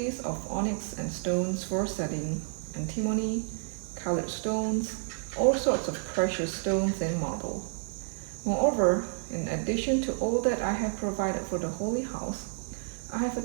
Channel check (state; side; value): silent; left; 58 dB below the other